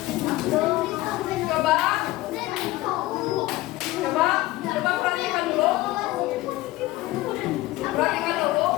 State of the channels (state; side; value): quieter; right; 18.1 dB